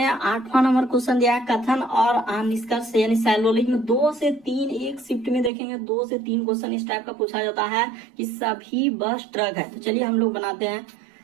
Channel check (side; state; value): left; drops out; at 5.5 s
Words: 8वां नंबर क्वेश्चन दिया है कथन और निष्कर्ष यानी साइलोलिक में 2 से 3 एक शिफ्ट में देखेंगे 2 से 3 क्वेश्चन इस टाइप का पूछा जाता है कि सभी बस ट्रक है। तो चलिए हम लोग बनाते हैं,